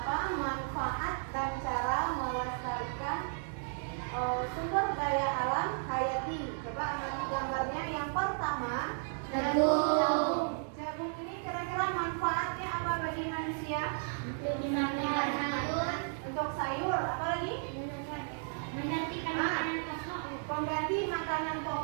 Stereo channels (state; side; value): silent; left; 55 dB below the other